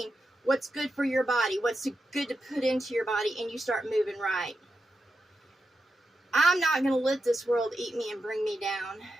what's good for your body, what's good to put into your body, and you start moving right. I'm not going to let this world eat me and bring me down.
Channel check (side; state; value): both; normal; correlation 0.88